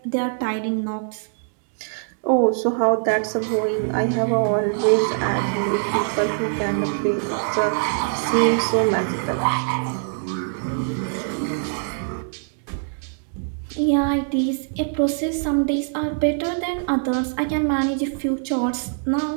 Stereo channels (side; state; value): left; silent; digital silence